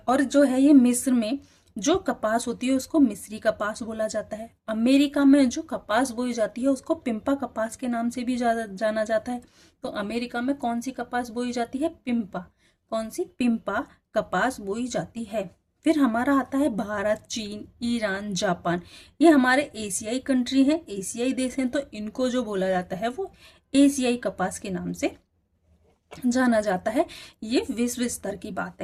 और जो है ये मिस्र में जो कपास होती है उसको मिस्री कपास बोला जाता है। अमेरिका में जो कपास बोई जाती है उसको पिम्पा कपास के नाम से भी जाना जाता है। तो अमेरिका में कौन सी कपास बोई जाती है? पिम्पा। कौन सी? पिम्पा कपास बोई जाती है। फिर हमारा आता है भारत, चीन, ईरान, जापान। ये हमारे एशियाई कंट्री हैं, एशियाई देश हैं, तो इनको जो बोला जाता है वो एशियाई कपास के नाम से जाना जाता है। ये विश्व स्तर की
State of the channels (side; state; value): both; identical; correlation 1.00